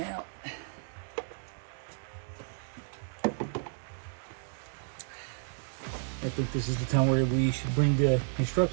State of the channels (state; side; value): silent; left; 56 dB below the other